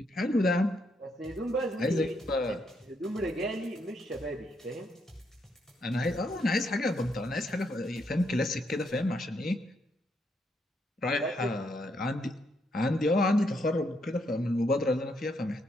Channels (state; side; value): normal; both; correlation 0.76